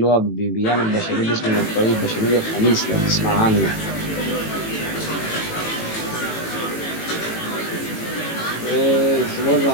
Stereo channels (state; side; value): late; right; 18 ms